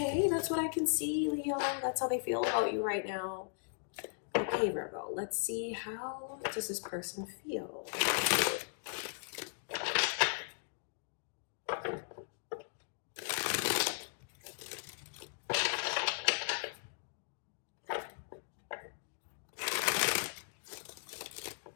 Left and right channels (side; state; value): right; silent; digital silence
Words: that's what I can see, Leo. That's how they feel about you right now. Okay, Virgo, let's see, how does this person feel?